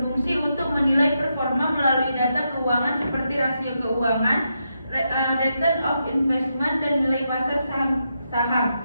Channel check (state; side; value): inverted; both; correlation -0.83